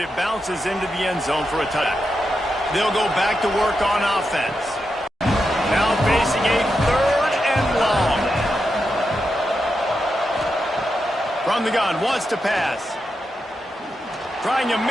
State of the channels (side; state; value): both; normal; correlation 0.87